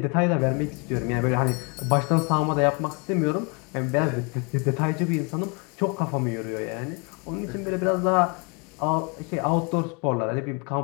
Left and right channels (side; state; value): right; quieter; 33.5 dB